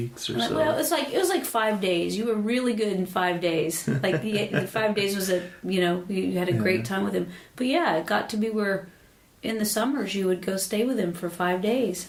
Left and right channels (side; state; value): both; identical; correlation 1.00